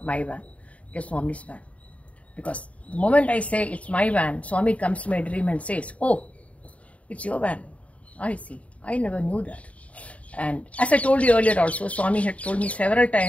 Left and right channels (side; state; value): right; late; 0.066 ms